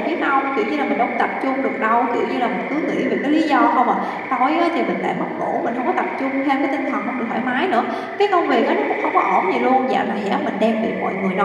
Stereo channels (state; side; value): identical; both; correlation 1.00